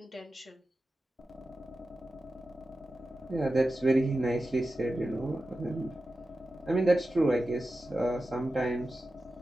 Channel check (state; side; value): normal; both; correlation 0.92